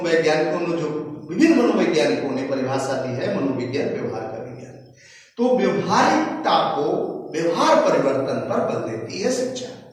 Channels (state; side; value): identical; both; correlation 1.00